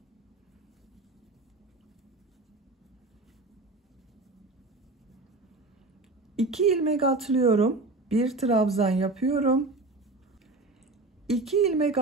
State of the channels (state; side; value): quieter; left; 3.3 dB